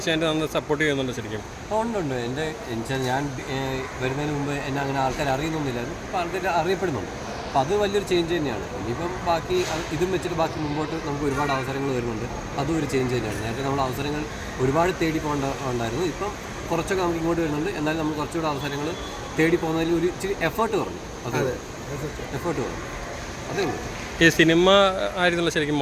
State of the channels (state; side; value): identical; both; correlation 1.00